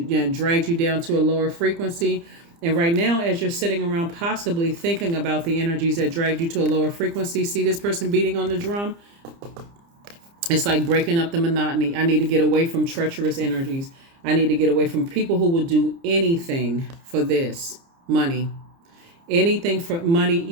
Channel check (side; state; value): left; late; 30 ms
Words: dragged you down to a lower frequency. And right now, as you're sitting around possibly thinking about the energies that dragged you to a lower frequency, see this person beating on the drum? It's like breaking up the monotony. I need to get away from treacherous energies. I need to get away from people who will do anything for this money. Anything for money,